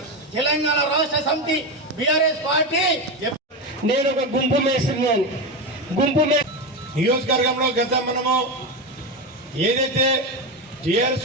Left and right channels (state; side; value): normal; both; correlation 0.15